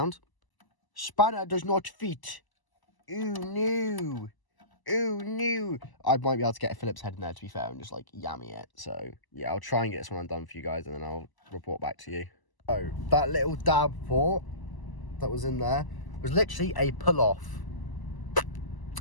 Spanner does not fit. Ooh, no. Ooh, no. I might be able to get a Phillips head in there, to be fair, and just, like, yammy it. So, yeah, I'll try and get this one undone for you guys, and then I'll report back to you. Oh, that little DAB port that was in there was literally a pull-off.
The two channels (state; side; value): late; right; 1.0 ms